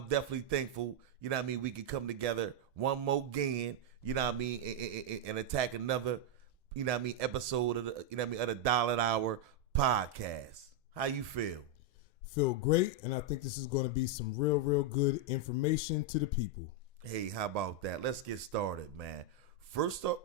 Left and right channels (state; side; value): normal; both; correlation 0.00